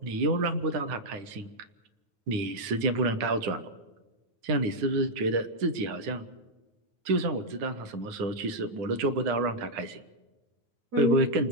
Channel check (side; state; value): left; late; 9.8 ms